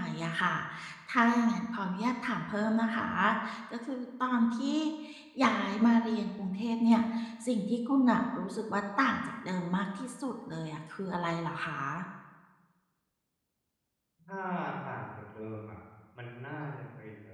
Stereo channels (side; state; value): both; identical; correlation 1.00